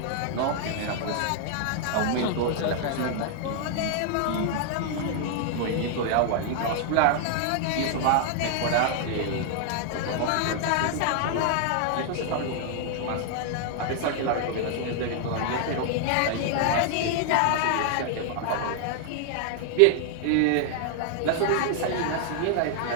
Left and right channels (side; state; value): both; different; correlation 0.00